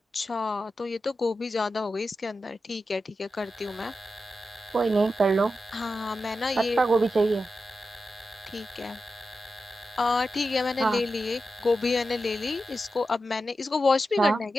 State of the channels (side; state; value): both; normal; correlation 0.90